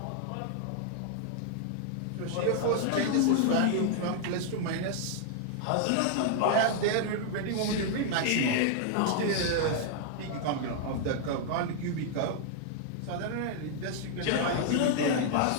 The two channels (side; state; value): both; different; correlation 0.00